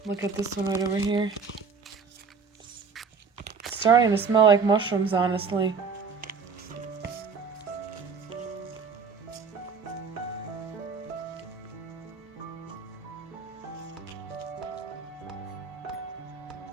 Look at this one right over here. It's starting to smell like mushrooms, honestly.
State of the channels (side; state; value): left; quieter; 5.3 dB